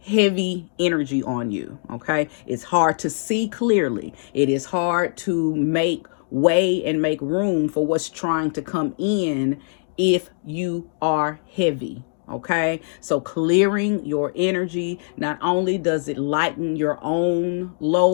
heavy energy on you. Okay. It's hard to see clearly. It is hard to make way and make room for what's trying to come in if you are heavy. Okay. So clearing your energy, not only does it lighten your own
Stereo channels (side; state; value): right; silent; digital silence